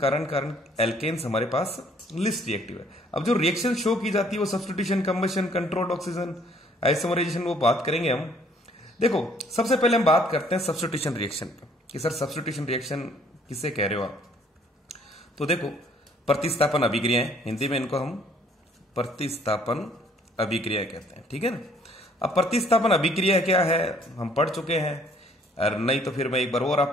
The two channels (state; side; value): normal; both; correlation 0.61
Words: एल्केन्स हमारे पास लिस्ट रिएक्टिव है। अब जो रिएक्शन शो की जाती है वो substitution, combustion, controlled oxygen, isomerisation, वो बात करेंगे हम। देखो सबसे पहले हम बात करते हैं सब्स्टिट्यूशन रिएक्शन पे कि सर सब्स्टिट्यूशन रिएक्शन किसे कह रहे हो आप। तो देखो प्रतिस्थापन अभिक्रियाएं, हिंदी में इनको हम प्रतिस्थापन अभिक्रिया कहते हैं। ठीक है ना। अब प्रतिस्थापन अभिक्रिया क्या है हम पढ़ चुके हैं, और नहीं तो फिर मैं एक बार और